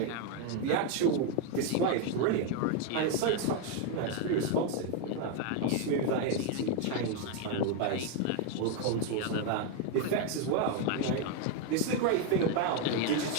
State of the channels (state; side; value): different; both; correlation 0.01